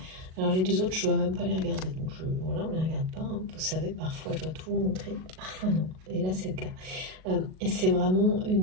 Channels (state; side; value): late; left; 38 ms